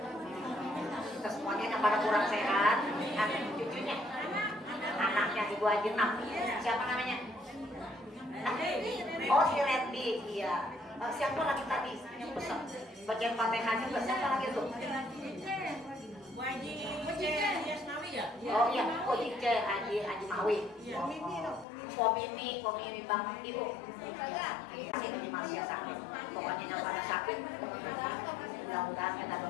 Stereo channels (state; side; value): drops out; right; at 21.7 s